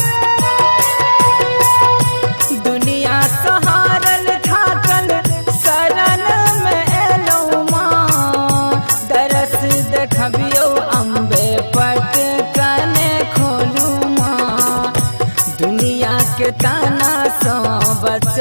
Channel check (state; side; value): inverted; both; correlation -1.00